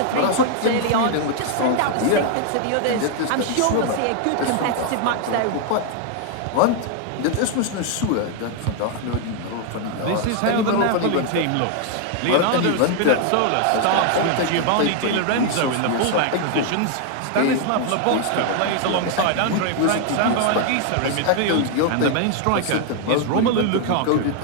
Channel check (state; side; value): different; both; correlation 0.00